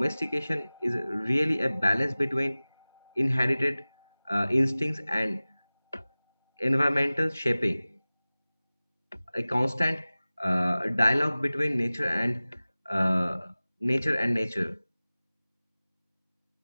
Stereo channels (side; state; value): both; inverted; correlation -0.98